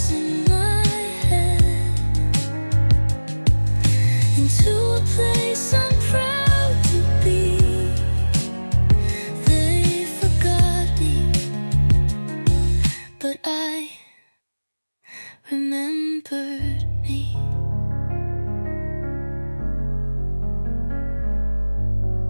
in my head into a place I'm proud to be. They forgot me, but I remember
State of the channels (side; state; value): both; inverted; correlation -1.00